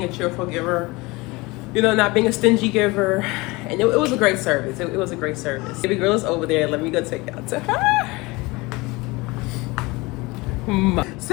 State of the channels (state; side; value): quieter; right; 23.5 dB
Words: a cheerful giver, you know, not being a stingy giver. And it was a great service. It was a great service. Baby girl is over there. Let me go take y'all to her.